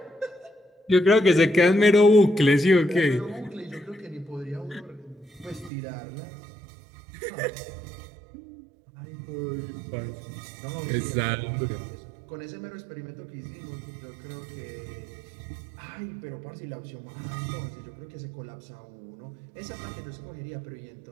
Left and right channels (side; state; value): left; drops out; at 5.7 s